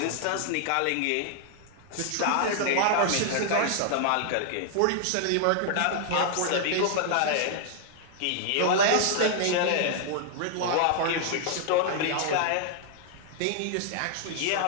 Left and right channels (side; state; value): both; different; correlation 0.00